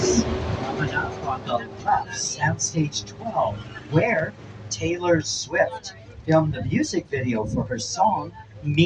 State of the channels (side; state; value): both; identical; correlation 1.00